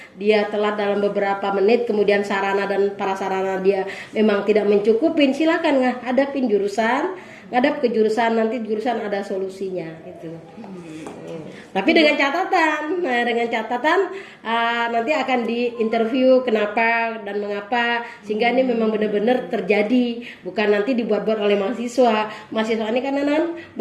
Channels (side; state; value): both; identical; correlation 1.00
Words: dia telat dalam beberapa menit, kemudian sarana dan prasarana dia memang tidak mencukupin, silakan ngadep ke jurusan, nanti jurusan ada solusinya gitu. Tapi dengan catatan, nanti akan diinterview kenapa dan mengapa, sehingga ini memang benar-benar terjadi, bukan nanti dibuat-buat oleh mahasiswa. Mahasiswa ini kan